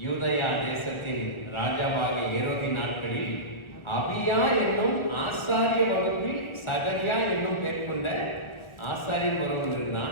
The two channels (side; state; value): right; late; 1.4 ms